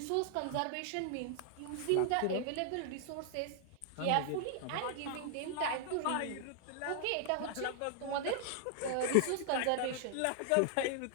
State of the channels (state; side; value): different; both; correlation 0.00